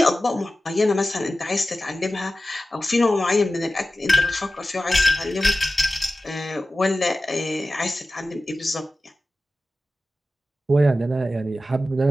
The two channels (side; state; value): both; normal; correlation 0.95